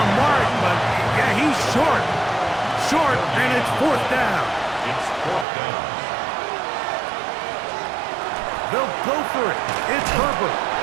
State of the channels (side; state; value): left; drops out; at 5.5 s